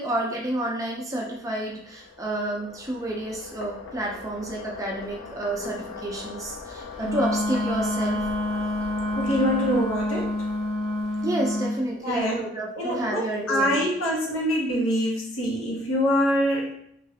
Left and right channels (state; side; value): normal; both; correlation 0.59